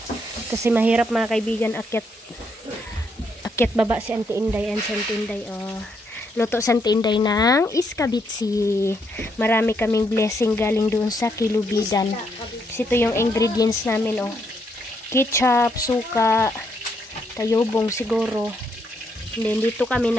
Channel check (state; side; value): normal; both; correlation 0.76